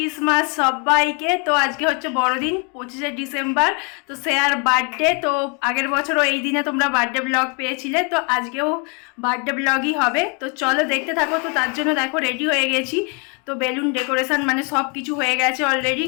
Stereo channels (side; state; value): right; quieter; 35.0 dB